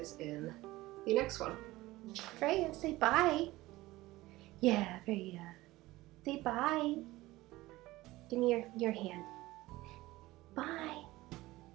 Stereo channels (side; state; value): left; quieter; 18.5 dB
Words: in the next one. Freya, say bye. Yeah, Freya. Say bye. Give me your hand. Bye.